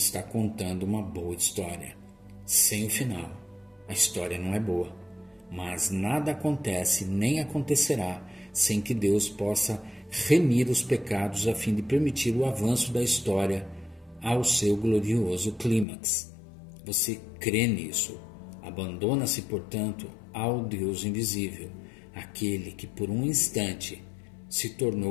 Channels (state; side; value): drops out; right; at 15.9 s